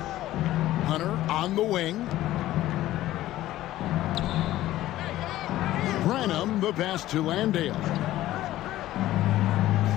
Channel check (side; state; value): right; quieter; 14.9 dB